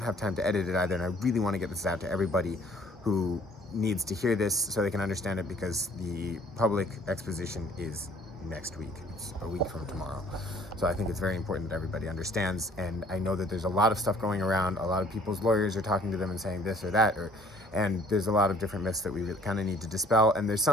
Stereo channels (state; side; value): normal; both; correlation 0.57